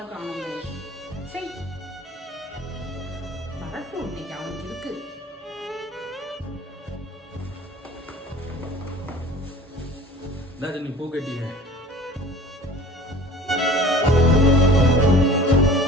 காணுமே. சரி வரட்டும், இன்னைக்கு அவனுக்கு இருக்கு. நீ பூ கட்டிங்க.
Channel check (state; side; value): normal; both; correlation 0.45